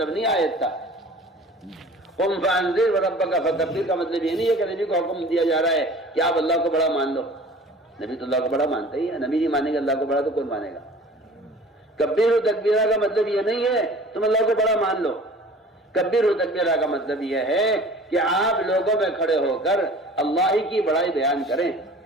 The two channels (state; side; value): normal; both; correlation 0.45